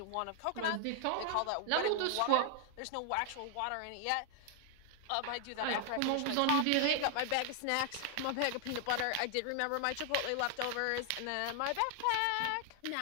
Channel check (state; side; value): different; both; correlation 0.00